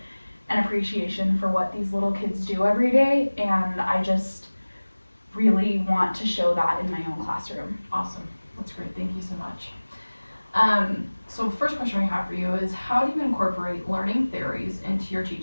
and appreciation for what these little kids do every day, and I just really want to show that in my own classroom. Awesome. That's great. Thank you so much. So the first question we have for you is, how do you incorporate learning theories into your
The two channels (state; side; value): inverted; both; correlation -1.00